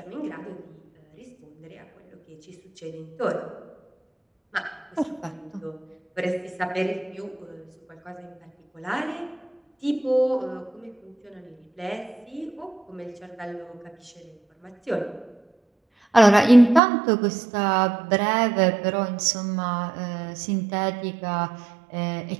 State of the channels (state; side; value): drops out; left; at 16.8 s